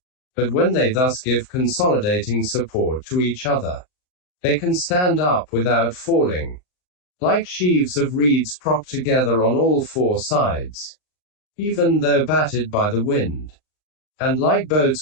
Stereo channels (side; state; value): right; late; 39 ms